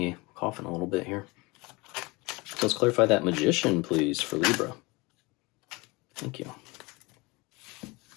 coughing a little bit here. Let's clarify that Magician, please, for Libra. Thank you.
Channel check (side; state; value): right; quieter; 24.8 dB